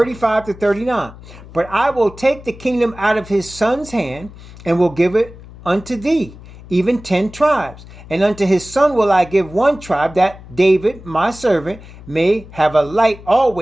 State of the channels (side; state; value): left; noise; hum, 18 dB below the sound